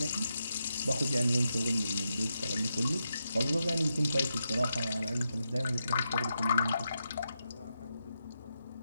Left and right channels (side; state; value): both; inverted; correlation -0.85